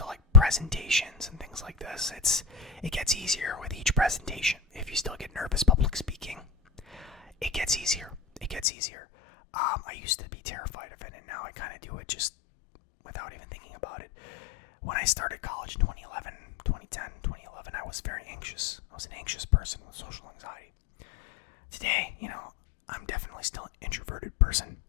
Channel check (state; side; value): drops out; right; at 8.7 s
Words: like presentations and things like this, it gets easier with each presentation. If you still get nervous public speaking, it gets easier. I used to be terrified just without even thinking about it. When I started college in 2011, I was very anxious. I was an anxious person with social anxiety. Today, I'm definitely still an introverted person.